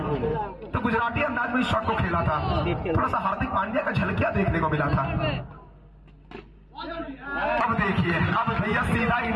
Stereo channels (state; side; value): identical; both; correlation 1.00